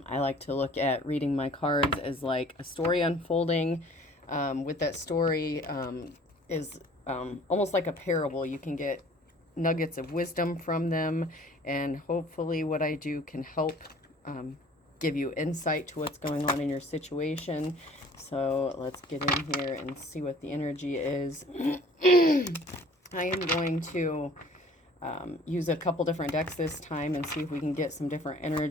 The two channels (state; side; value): normal; both; correlation 0.51